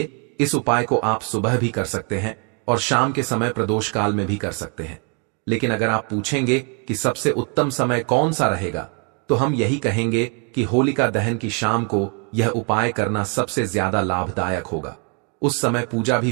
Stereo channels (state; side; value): quieter; left; 37.4 dB